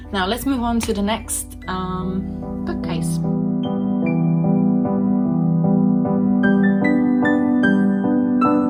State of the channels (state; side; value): identical; both; correlation 1.00